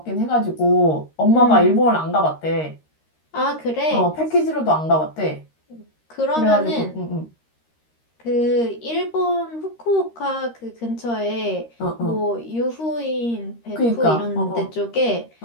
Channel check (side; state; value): right; late; 13 ms